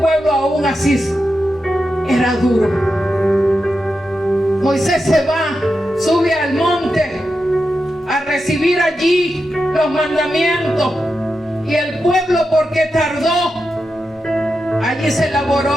aún así era duro. Moisés se va, sube al monte a recibir allí los mandamientos, Y el pueblo, porque tardó, allí se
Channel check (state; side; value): normal; both; correlation 0.88